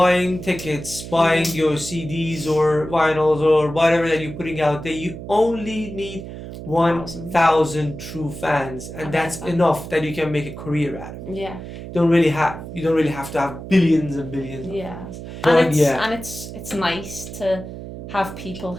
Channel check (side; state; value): right; noise; hum, 11 dB below the sound